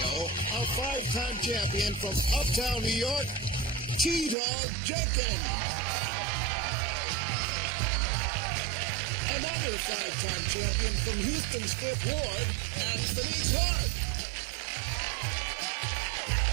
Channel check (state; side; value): drops out; left; at 4.4 s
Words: a five-time champion from Uptown New York, T-Dog Jenkins. Another five-time champion from Houston's Fifth Ward, Anthony Clark.